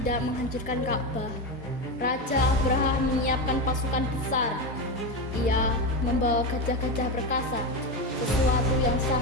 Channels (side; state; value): both; normal; correlation 0.16